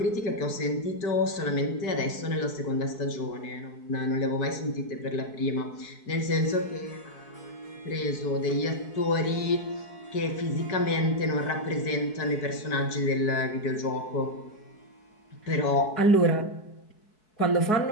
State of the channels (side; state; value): right; late; 4.6 ms